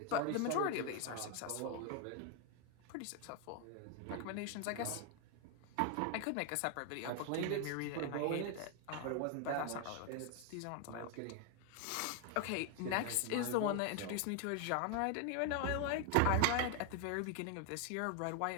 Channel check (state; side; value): different; both; correlation 0.01